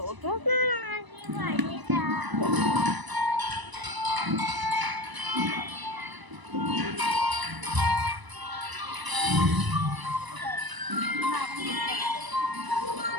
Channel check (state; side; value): late; left; 1.0 ms